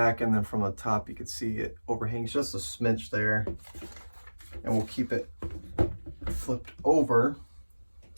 and then from the top you can see it overhangs just a smidge there, and we'll keep it flipped over.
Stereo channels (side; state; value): both; inverted; correlation -1.00